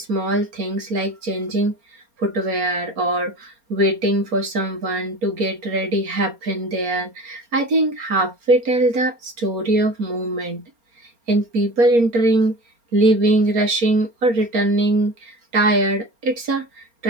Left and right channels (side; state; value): left; late; 4.3 ms